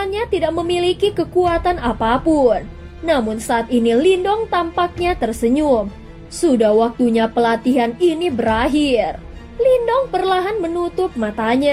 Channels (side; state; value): both; identical; correlation 1.00